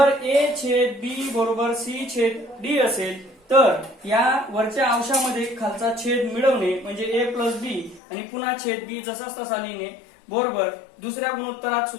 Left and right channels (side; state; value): right; drops out; at 8.0 s